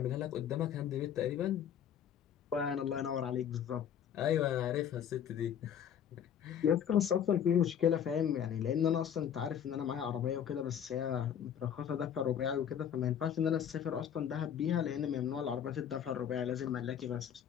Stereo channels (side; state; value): right; quieter; 8.9 dB